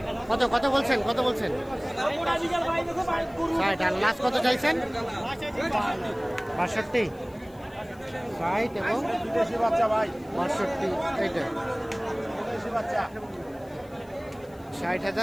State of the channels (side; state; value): left; noise; hiss, 28 dB below the sound